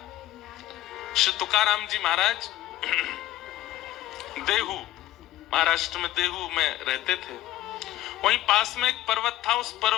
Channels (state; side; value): quieter; right; 15.0 dB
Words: श्री तुकाराम जी महाराज देहू, महाराष्ट्र में देहू में रहते थे। वहीं पास में एक पर्वत था, उस